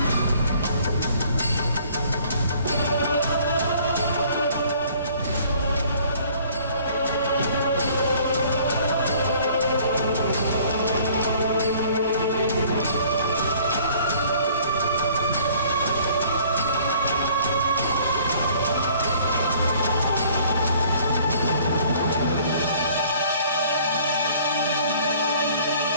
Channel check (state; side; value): inverted; both; correlation -0.56